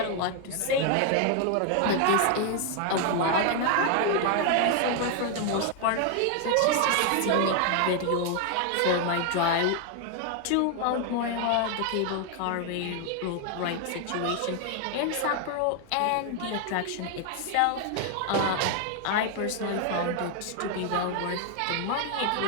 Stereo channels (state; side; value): different; both; correlation 0.00